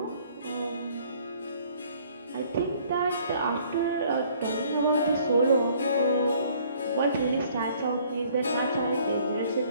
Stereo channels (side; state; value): both; inverted; correlation -0.59